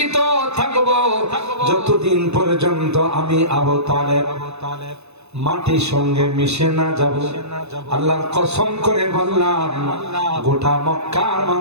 থাকব, যতদিন পর্যন্ত আমি আবু তালেব মাটির সঙ্গে মিশে না যাব, আল্লাহর কসম করে বললাম, গোটা মক্কার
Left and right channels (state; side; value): late; left; 0.80 ms